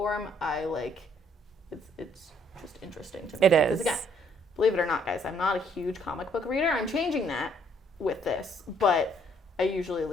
I like it's just interesting to me. It is. Because again, believe it or not, guys, I'm not a huge comic book reader. I'm changing that with this, but I usually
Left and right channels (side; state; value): both; normal; correlation 0.65